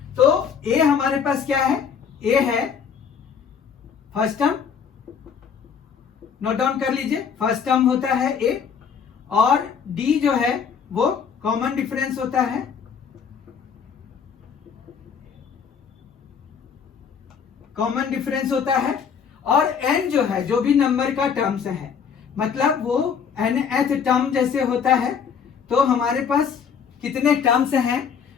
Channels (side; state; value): right; quieter; 6.8 dB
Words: तो ए हमारे पास क्या है? ए है फर्स्ट टर्म नोट डाउन कर लीजिए, फर्स्ट टर्म होता है ए और डी जो है वो कॉमन डिफरेंस होता है, कॉमन डिफरेंस होता है। और एन जो है जो भी नंबर का टर्म्स है, मतलब वो nth टर्म जैसे होता है, तो हमारे पास कितने टर्म्स हैं,